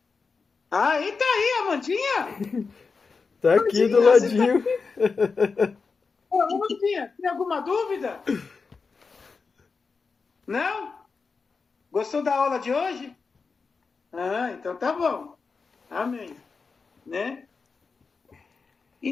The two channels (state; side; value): quieter; right; 4.8 dB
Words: Ah, e tá aí, Amandinha? Tá aqui do ladinho. Ô, Amandinha, tem alguma dúvida? Não? Gostou da aula de hoje? Ah, então tá bom. Amém. Né? E